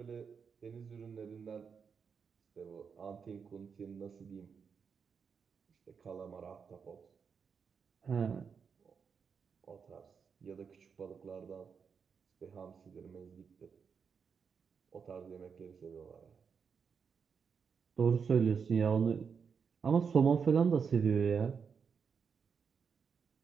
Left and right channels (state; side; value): quieter; left; 6.2 dB